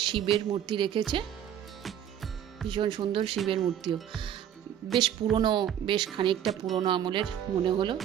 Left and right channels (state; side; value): quieter; left; 10.0 dB